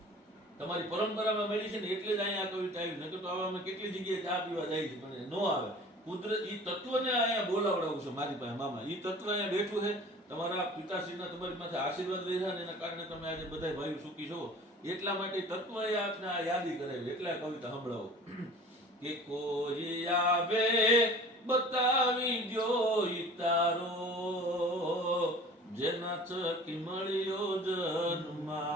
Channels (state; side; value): normal; both; correlation 0.44